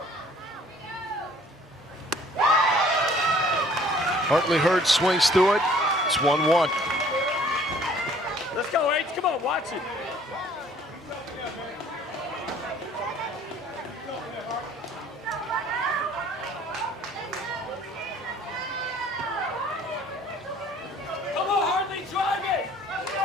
Hartley Hurd swings through it. It's 1-1. Let's go, H. Come on, watch it. Come on, Hartley, drive it.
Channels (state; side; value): normal; both; correlation 0.55